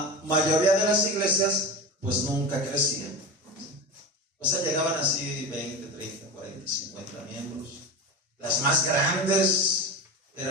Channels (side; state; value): both; normal; correlation 0.26